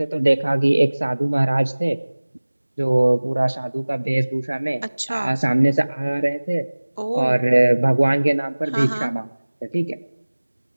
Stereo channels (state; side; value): inverted; both; correlation -1.00